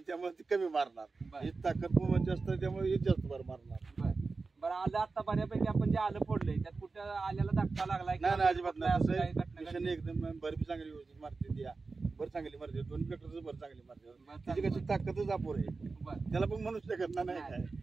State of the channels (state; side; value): quieter; left; 4.1 dB